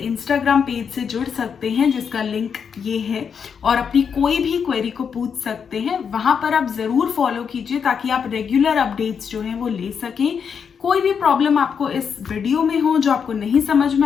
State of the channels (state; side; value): quieter; right; 6.8 dB